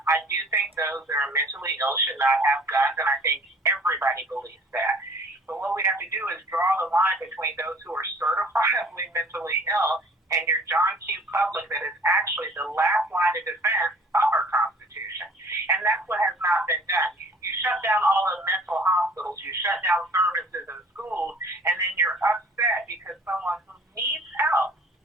I do think those that are mentally ill should not have guns, and I think everybody believes that. But what we have to do is draw the line between those who are certifiably mentally ill and your John Q. public that is actually the last line of defense of our Constitution. And that's what has not been done. You shut down all the mental hospitals, you shut down services in schools, and then you're upset because someone who needs help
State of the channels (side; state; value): both; normal; correlation 0.51